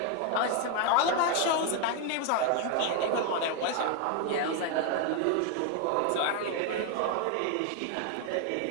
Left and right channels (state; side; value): different; both; correlation 0.01